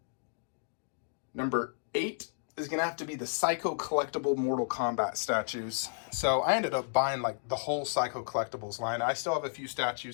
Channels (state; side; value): silent; right; digital silence